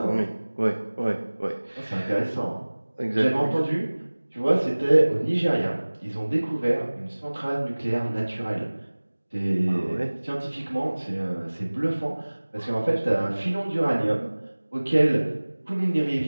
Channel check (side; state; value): both; inverted; correlation -1.00